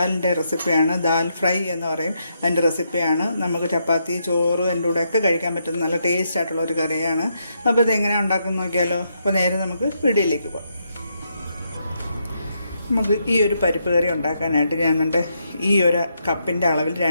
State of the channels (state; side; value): inverted; both; correlation -0.79